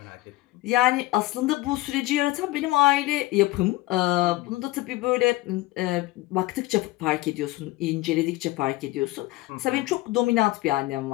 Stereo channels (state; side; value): quieter; right; 18.7 dB